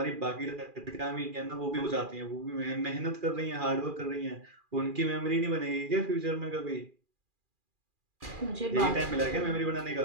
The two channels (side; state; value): left; late; 2.4 ms